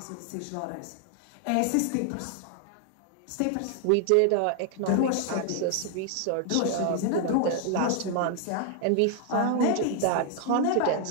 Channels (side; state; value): both; different; correlation 0.00